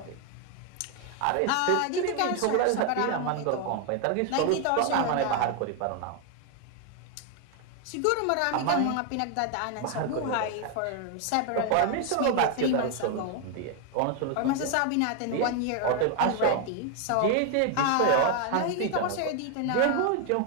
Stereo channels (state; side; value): different; both; correlation 0.01